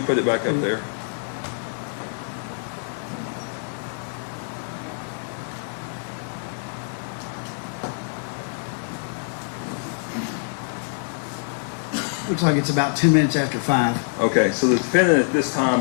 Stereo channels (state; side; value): silent; right; 62 dB below the other